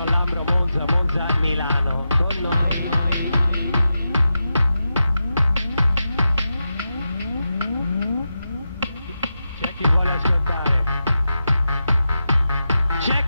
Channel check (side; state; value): both; inverted; correlation -0.89